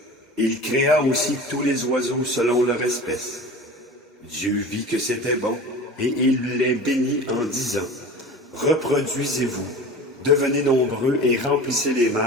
Il créa aussi tous les oiseaux selon leur espèce. Dieu vit que c'était bon, et il les bénit en disant, « Reproduisez-vous, devenez nombreux et remplissez les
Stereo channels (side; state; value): both; normal; correlation 0.36